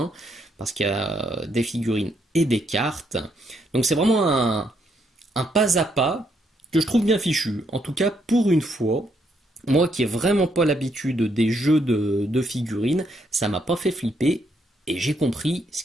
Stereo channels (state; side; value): normal; both; correlation 0.75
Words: Parce qu'il y a des figurines et des cartes. Donc c'est vraiment un pas à pas que je trouve bien fichu. En tout cas, pour une fois, moi qui n'ai vraiment pas l'habitude des jeux de figurines, ça m'a pas fait flipper et j'ai compris ce